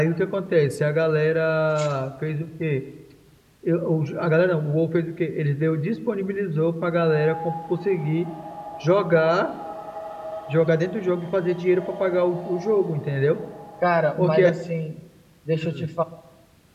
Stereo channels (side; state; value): both; identical; correlation 1.00